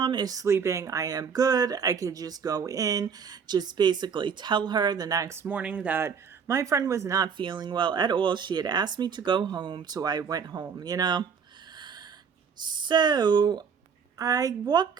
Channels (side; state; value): left; quieter; 6.4 dB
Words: is sleeping, I am good. I could just go in, just basically tell her the next morning that my friend was not feeling well at all. She had asked me to go home, so I went home, you know? So I